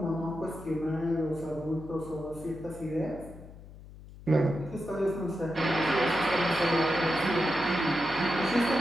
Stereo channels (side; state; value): left; noise; hum, 17 dB below the sound